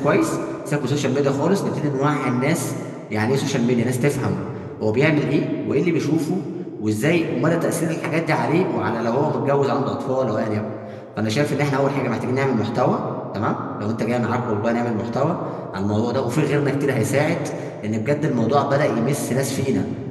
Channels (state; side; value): identical; both; correlation 1.00